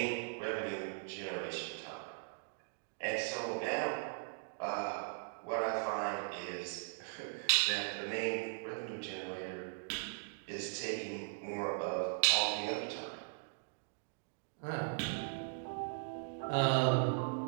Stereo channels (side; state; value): left; silent; digital silence